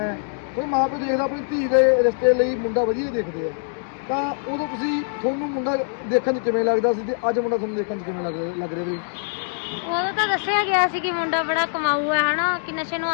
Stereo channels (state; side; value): silent; right; digital silence